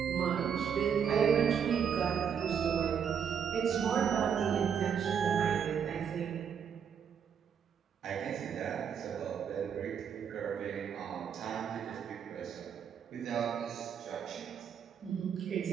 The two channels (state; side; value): quieter; left; 7.7 dB